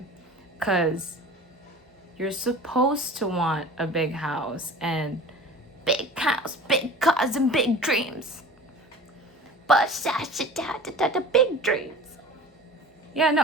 Because you're supposed to want a big house, big cars, and big dreams. But the big dreams. Yeah, no,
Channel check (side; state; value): both; normal; correlation 0.39